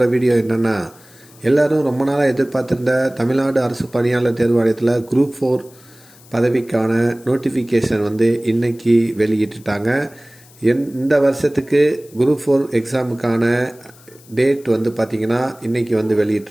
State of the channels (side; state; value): left; noise; hiss, 25 dB below the sound